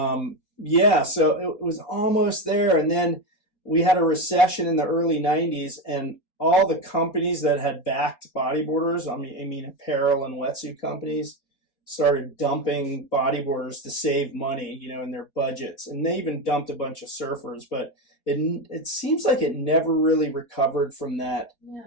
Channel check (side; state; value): right; late; 4.3 ms